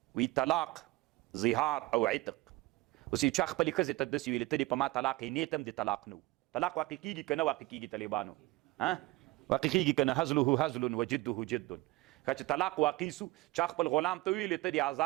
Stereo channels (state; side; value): quieter; left; 20.1 dB